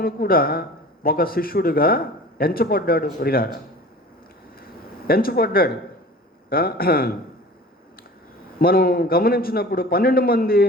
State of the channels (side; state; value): both; normal; correlation 0.41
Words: కూడా ఒక శిష్యుడిగా ఎంచబడ్డాడు ప్రియులారా. మనం గమనించినప్పుడు 12 మంది